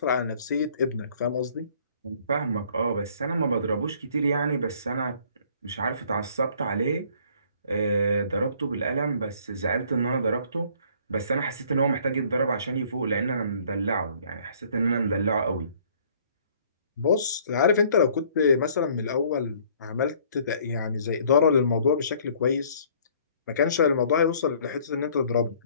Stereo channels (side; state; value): both; inverted; correlation -0.58